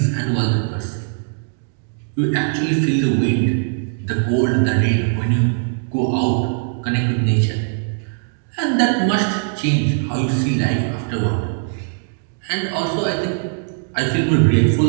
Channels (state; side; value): silent; left; digital silence